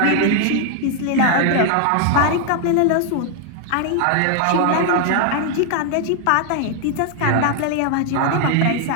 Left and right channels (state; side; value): different; both; correlation 0.00